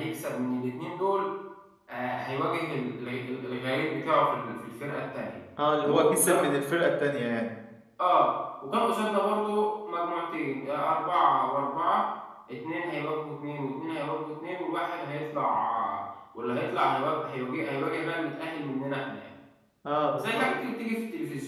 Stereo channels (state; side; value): identical; both; correlation 1.00